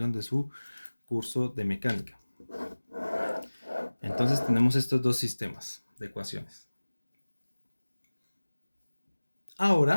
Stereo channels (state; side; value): inverted; both; correlation -1.00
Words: de su curso de mecánica. Entonces tenemos estos dos sistemas de ecuaciones.